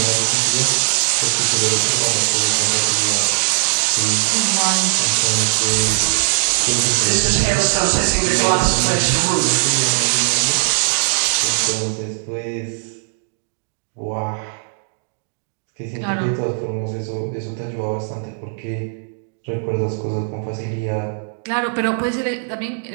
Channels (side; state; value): left; silent; digital silence